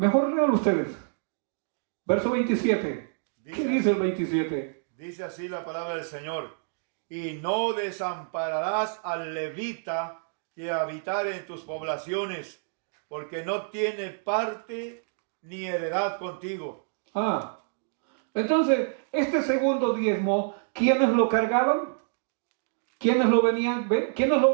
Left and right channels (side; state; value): left; silent; digital silence